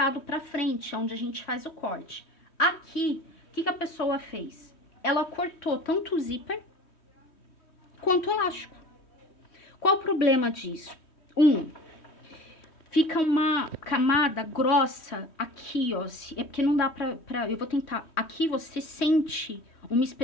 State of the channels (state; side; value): late; right; 3.1 ms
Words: para frente, onde a gente faz o corte. Aqui, o que que a pessoa fez? Ela cortou tanto o zíper quanto o elástico. Qual o problema disso? Fica uma camada grossa aqui, ó. É porque não dá pra... Eu vou tentar. Aqui você sente uma